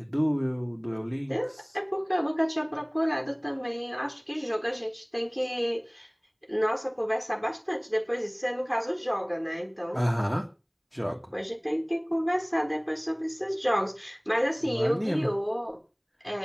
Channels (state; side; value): identical; both; correlation 1.00